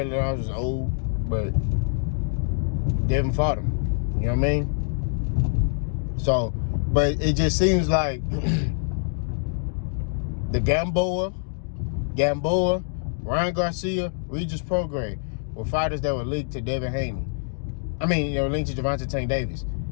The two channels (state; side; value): silent; right; digital silence